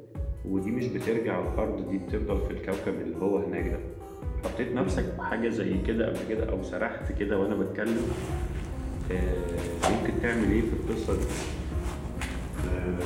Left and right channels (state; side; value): identical; both; correlation 1.00